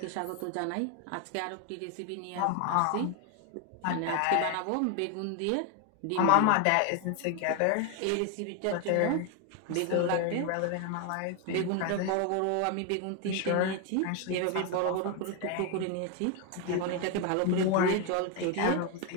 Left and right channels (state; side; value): different; both; correlation 0.01